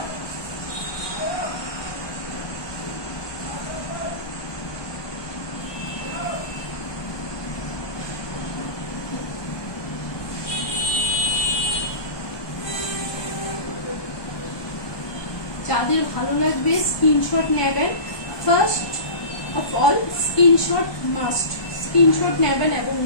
যাদের ভালো লাগবে স্ক্রিনশট নেবেন, first of all screenshot must, screenshot নেবেন এবং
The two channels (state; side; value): late; right; 1.2 ms